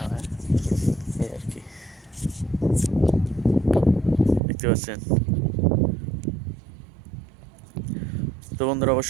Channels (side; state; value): left; drops out; at 4.4 s